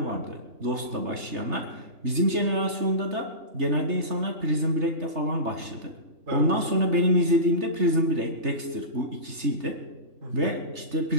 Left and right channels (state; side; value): late; left; 3.3 ms